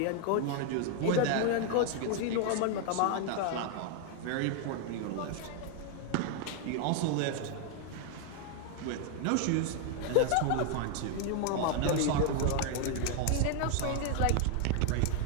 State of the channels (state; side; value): different; both; correlation 0.00